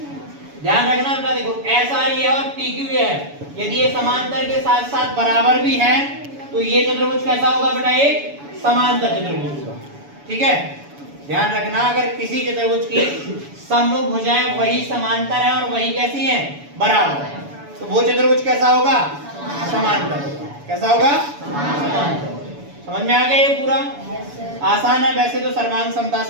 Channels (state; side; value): late; left; 7.0 ms